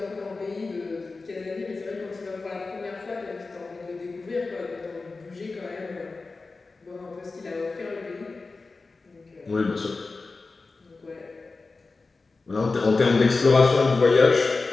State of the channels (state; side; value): quieter; right; 3.9 dB